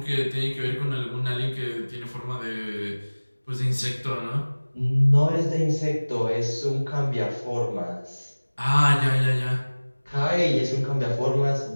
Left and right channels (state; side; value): inverted; both; correlation -1.00